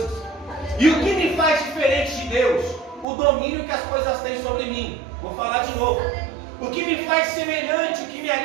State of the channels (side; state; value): left; drops out; at 3.1 s